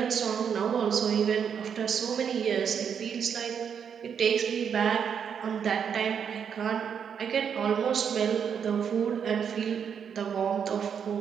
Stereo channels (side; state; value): left; quieter; 7.5 dB